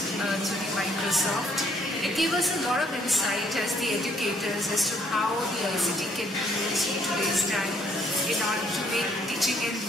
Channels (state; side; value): normal; both; correlation 0.65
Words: through the Microsoft. It gave us a lot of insight as the educators as to how the ICT can be used in today's time in order to make teaching and